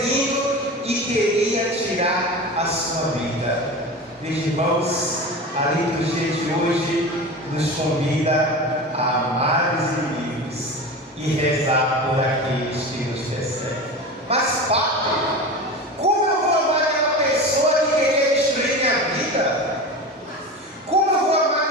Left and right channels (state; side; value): normal; both; correlation 0.29